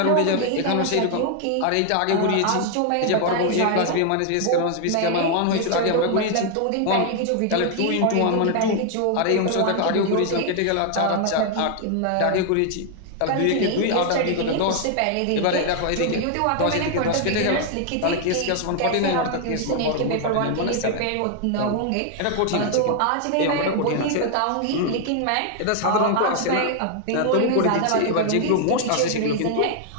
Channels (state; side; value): different; both; correlation 0.00